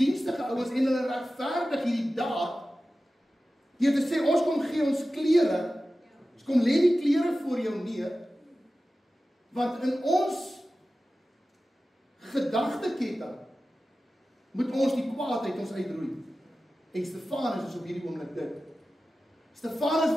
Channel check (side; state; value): both; normal; correlation 0.95